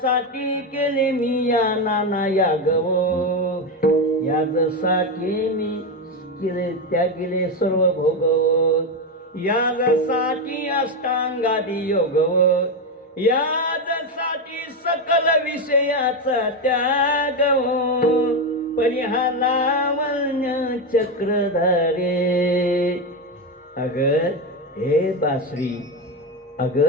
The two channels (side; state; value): both; normal; correlation 0.11